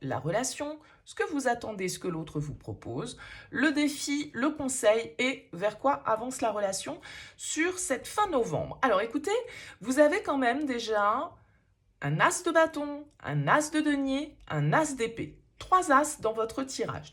la relation, ce que vous attendez, ce que l'autre vous propose, le défi, le conseil et vers quoi avance la relation sur cette fin novembre. Alors écoutez, vous avez quand même déjà un as de bâton, un as de denier, un as d'épée. Trois as dans votre tirage.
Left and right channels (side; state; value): both; identical; correlation 1.00